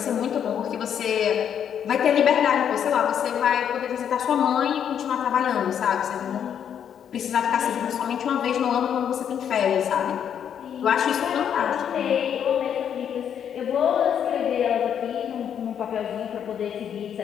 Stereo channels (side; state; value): right; quieter; 8.7 dB